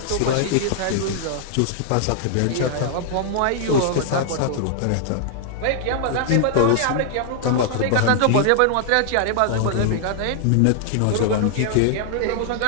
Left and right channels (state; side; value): different; both; correlation -0.01